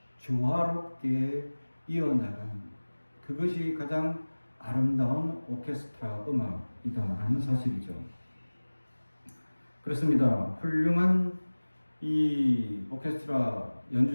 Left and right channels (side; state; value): both; inverted; correlation -1.00